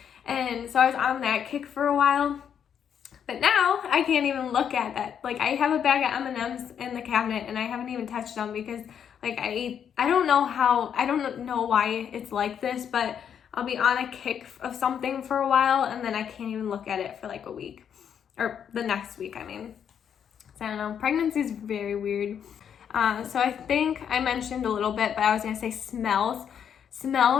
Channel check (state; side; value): quieter; right; 8.3 dB